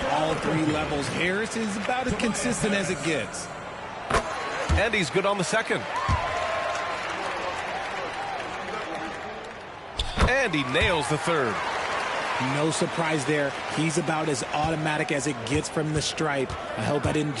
all 3 levels. Harris is about as consistent as it gets. And he's good on the second. And he nails the third. No surprise there. He's about as automatic as it gets from the stripe. I hope I didn't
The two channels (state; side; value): identical; both; correlation 1.00